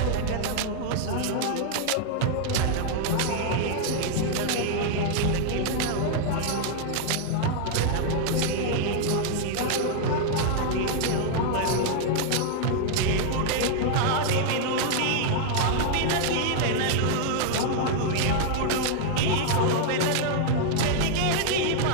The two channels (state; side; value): different; both; correlation 0.00